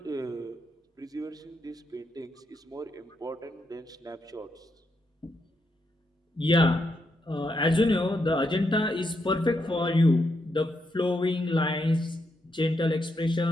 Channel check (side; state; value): both; normal; correlation 0.81